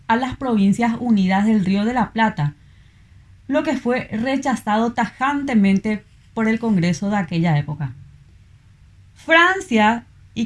a las Provincias Unidas del Río de la Plata, lo que fue rechazado tajantemente por el Congreso de aquella época. Francia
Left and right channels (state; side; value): identical; both; correlation 1.00